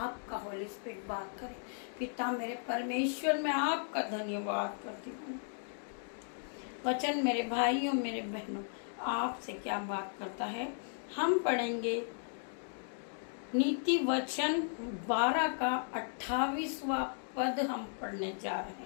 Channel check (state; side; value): silent; right; digital silence